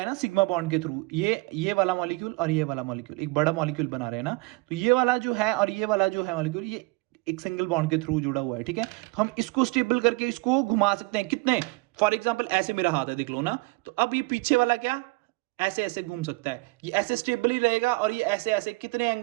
ना सिग्मा बॉन्ड के थ्रू, ये वाला मॉलिक्यूल और ये वाला मॉलिक्यूल एक बड़ा मॉलिक्यूल बना रहे हैं ना, तो ये वाला जो है और ये वाला जो है मॉलिक्यूल, ये एक सिंगल बॉन्ड के थ्रू जुड़ा हुआ है। ठीक है। तो हम इसको स्टेबल करके इसको घुमा सकते हैं कितने, फॉर एग्जाम्पल ऐसे मेरा हाथ है, देख लो ना। तो अब ये पीछे वाला क्या ऐसे ऐसे घूम सकता है, ये ऐसे स्टेबल ही रहेगा, और ये ऐसे ऐसे कितने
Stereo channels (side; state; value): left; quieter; 25.5 dB